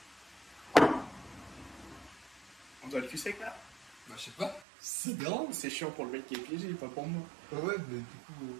On doit le cul sec là? Bah, je sais pas. C'est grand. C'est chiant pour le mec qui est piégé, pas pour moi. Ouais, mais du coup.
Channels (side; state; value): left; drops out; at 4.6 s